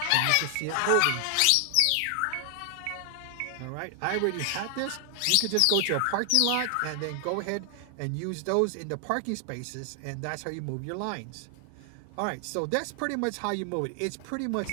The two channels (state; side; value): different; both; correlation 0.00